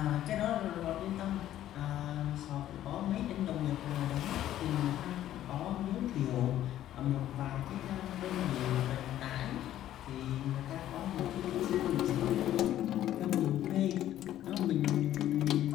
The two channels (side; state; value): right; quieter; 12.5 dB